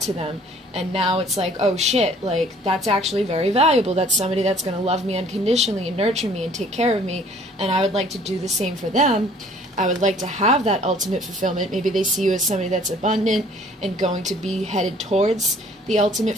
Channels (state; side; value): normal; both; correlation 0.55